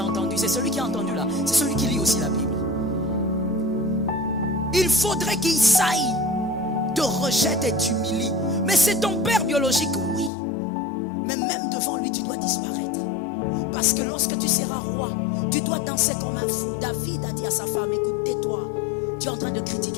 entendu. C'est celui qui a entendu là. C'est celui qui lit aussi la Bible. Il faudrait qu'il saille, te rejette et t'humilie. Mais c'est ton père biologique, oui. Mais même devant lui, tu dois disparaître. Parce que lorsque tu seras roi, tu dois danser comme un fou. David a dit à sa femme, écoute, tais-toi. Tu es en train de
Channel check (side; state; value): right; drops out; at 10.3 s